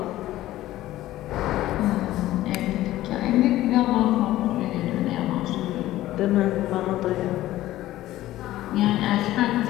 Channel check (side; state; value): right; quieter; 15.1 dB